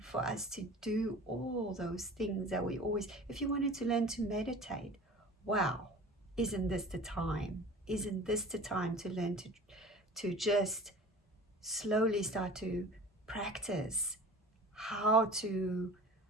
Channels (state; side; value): normal; both; correlation 0.40